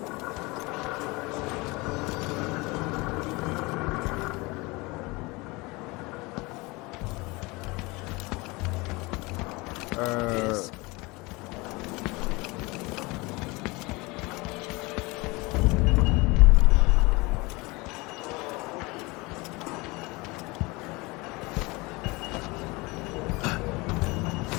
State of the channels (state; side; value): quieter; right; 24.5 dB